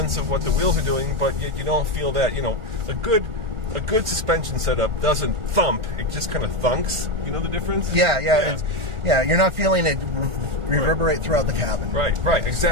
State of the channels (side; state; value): left; late; 1.4 ms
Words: of what the wheels are doing, but yet you don't feel that, a good suspension setup doesn't thump. It just kind of thunks. You know the difference? Yeah. You're not feeling it reverberate throughout the cabin. Right,